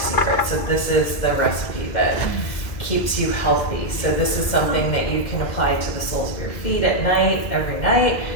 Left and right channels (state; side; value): late; right; 2.3 ms